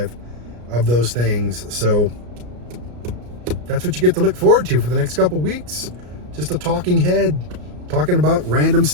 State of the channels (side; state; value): left; late; 33 ms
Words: of those things. So that's what you get to look forward to for the next couple weeks. Just a talking head, talking about random